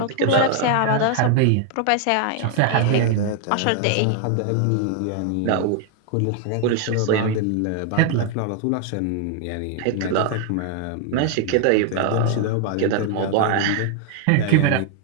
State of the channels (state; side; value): different; both; correlation 0.00